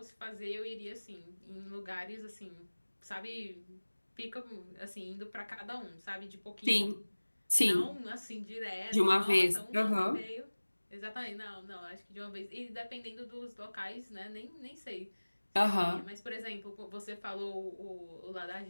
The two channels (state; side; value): inverted; both; correlation -1.00